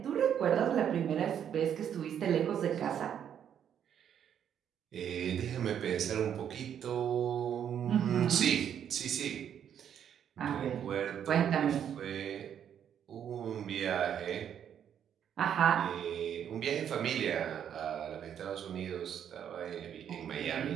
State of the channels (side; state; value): left; quieter; 9.0 dB